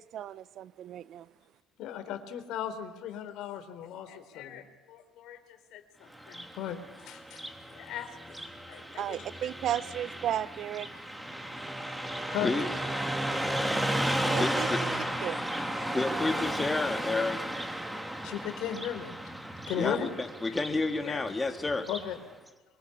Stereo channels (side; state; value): both; normal; correlation 0.79